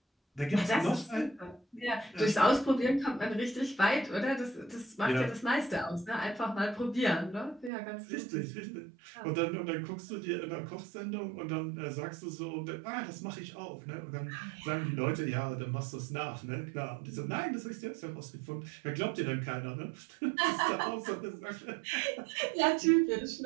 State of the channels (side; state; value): left; drops out; at 7.7 s